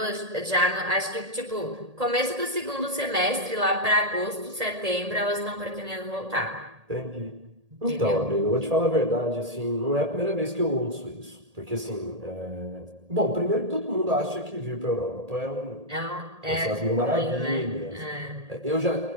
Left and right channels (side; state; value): left; late; 1.8 ms